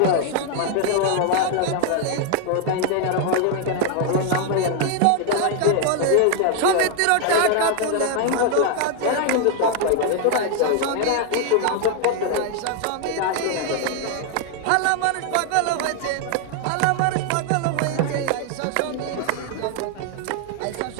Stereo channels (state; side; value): different; both; correlation 0.00